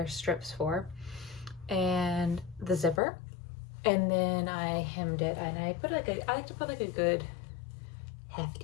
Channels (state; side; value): drops out; right; at 3.0 s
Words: strips for, and the zipper, and then I hemmed it, and I like to put like a good